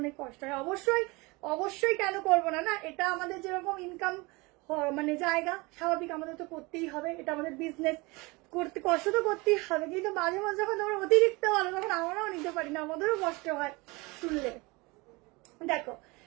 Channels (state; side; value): quieter; left; 25.1 dB